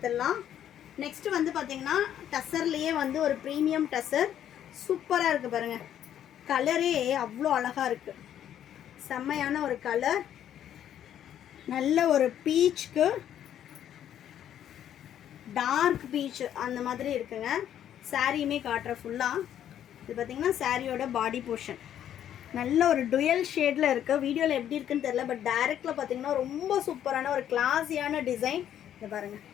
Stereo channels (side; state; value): right; quieter; 10.4 dB